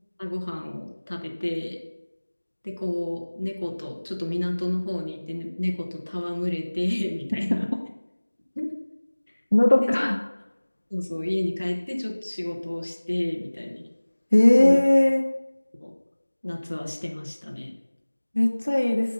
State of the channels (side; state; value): both; inverted; correlation -1.00